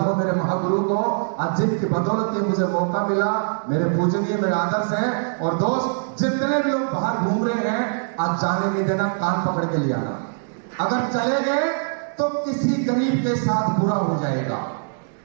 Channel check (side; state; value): left; silent; digital silence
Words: हो मेरे महागुरु को, आज जिनकी बदौलत ये मुझे मौका मिला। मेरे पूजनीय मेरे आदर्श हैं। और दोस्त जितने भी लोग बाहर घूम रहे हैं, आज जाने नहीं देना, कान पकड़ के ले आना। अगर चले गए तो किसी गरीब के साथ बुरा हो जाएगा।